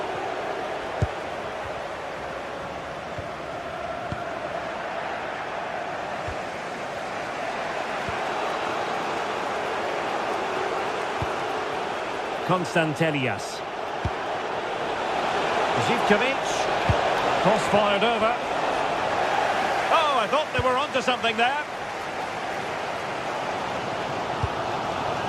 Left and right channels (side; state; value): both; identical; correlation 1.00